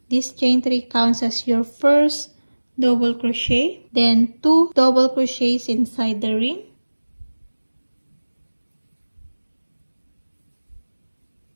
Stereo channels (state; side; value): inverted; both; correlation -1.00